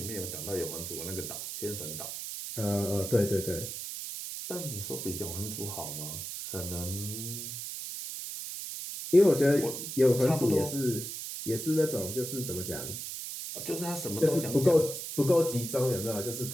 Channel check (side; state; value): right; noise; hiss, 7 dB below the sound